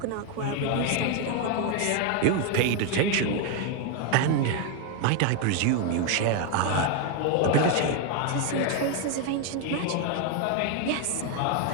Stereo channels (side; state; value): both; different; correlation 0.01